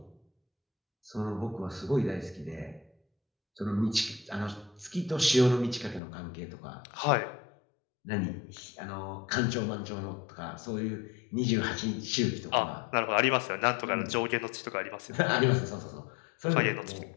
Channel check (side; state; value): right; drops out; at 6.0 s